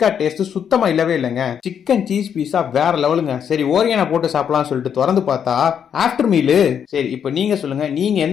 டேஸ்ட் சுத்தமா இல்லவே இல்லைங்க. சிக்கன் சீஸ் பீஸா வேற லெவலுங்க. சரி ஓரியானா போட்டு சாப்பிடலாம் சொல்லிட்டு திறந்து பார்த்தா ஆஃப்டர் மீலு. சரி இப்போ நீங்க சொல்லுங்க, நீங்க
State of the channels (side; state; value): right; quieter; 8.1 dB